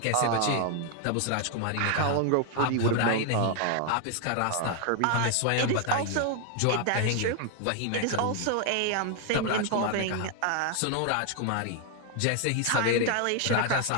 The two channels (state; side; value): different; both; correlation 0.00